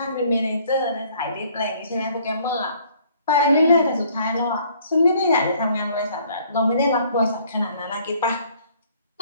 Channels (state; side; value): inverted; both; correlation -0.60